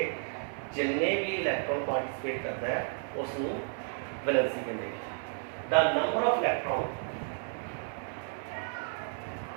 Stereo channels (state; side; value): silent; left; 56 dB below the other